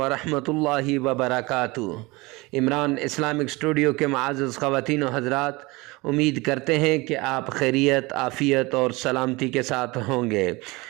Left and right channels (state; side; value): quieter; left; 23.5 dB